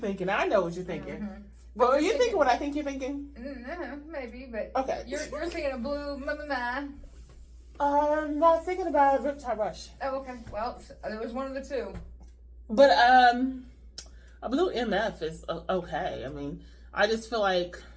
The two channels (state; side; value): identical; both; correlation 1.00